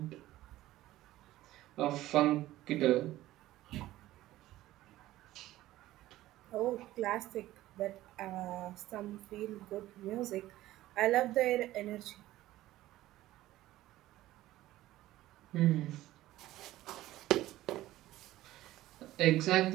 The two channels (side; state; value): left; quieter; 15.5 dB